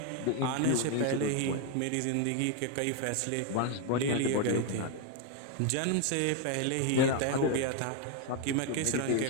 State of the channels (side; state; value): both; different; correlation 0.01